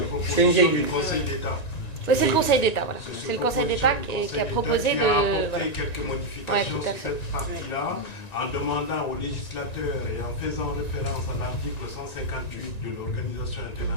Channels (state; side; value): late; right; 1.9 ms